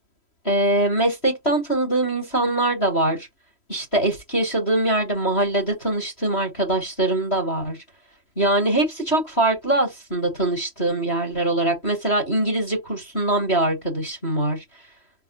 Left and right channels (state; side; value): late; right; 3.1 ms